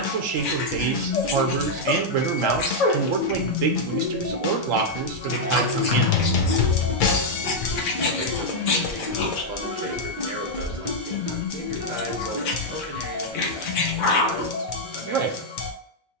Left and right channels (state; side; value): normal; both; correlation -0.02